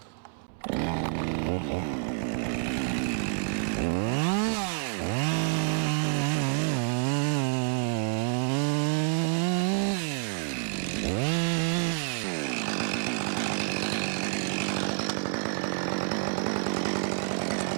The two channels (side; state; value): left; silent; 59 dB below the other